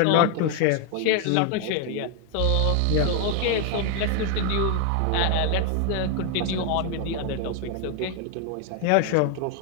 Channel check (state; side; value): different; both; correlation 0.01